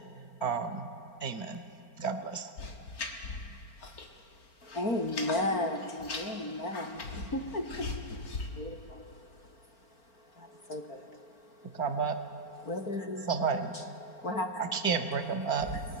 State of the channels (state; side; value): late; right; 4.4 ms